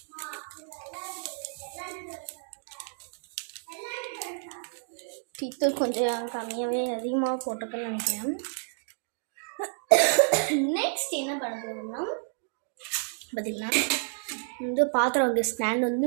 டீத்தூள் கொஞ்சம் கம்மியாகவே அதிகமாக போட்டிருக்கேன்னு நினைக்கிறேன். நெக்ஸ்ட் என்ன பண்ண போகிறோம்னா பார்த்தீங்கன்னா வந்து பாத்திரம் வைக்கிற ஸ்டாண்ட்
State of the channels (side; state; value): left; silent; 58 dB below the other